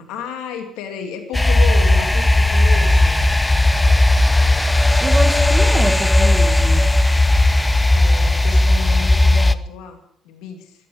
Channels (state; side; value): normal; both; correlation 0.97